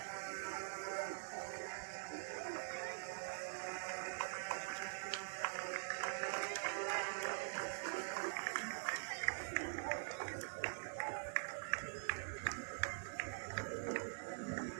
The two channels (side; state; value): left; silent; digital silence